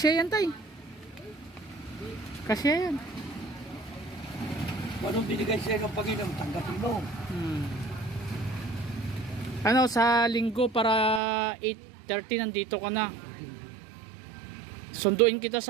yan, tay. Kasya yan. Anong binigay sa'yo ng Panginoon? Tanggapin mo. Ano, sa linggo para 8:30 nandito ka na. Sunduin kita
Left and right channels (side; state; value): left; drops out; at 11.2 s